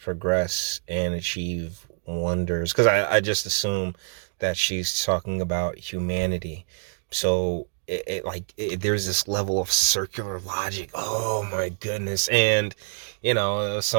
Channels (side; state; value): left; silent; digital silence